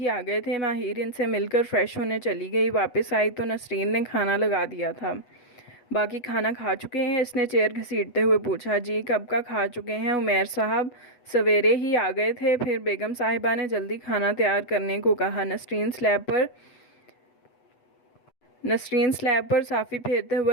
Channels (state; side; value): late; right; 8.2 ms